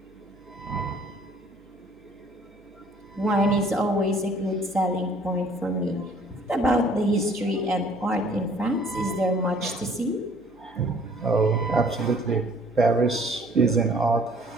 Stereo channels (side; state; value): right; noise; hum, 29 dB below the sound